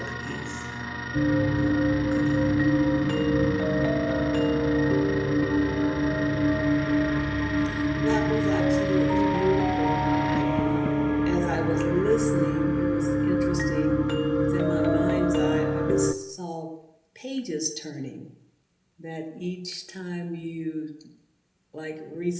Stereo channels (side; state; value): both; identical; correlation 1.00